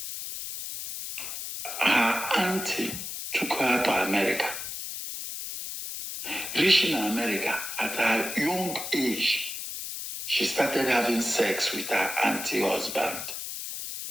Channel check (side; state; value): left; noise; hiss, 7 dB below the sound